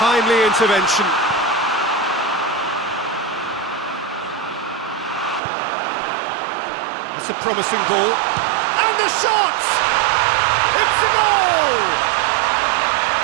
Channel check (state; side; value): drops out; left; at 5.4 s